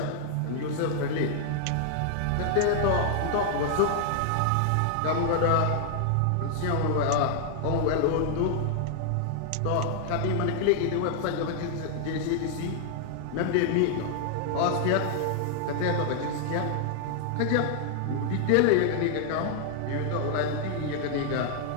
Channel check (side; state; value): both; different; correlation 0.00